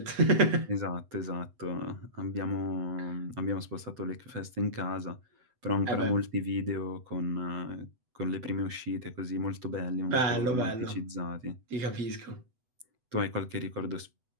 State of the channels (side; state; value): left; late; 8.0 ms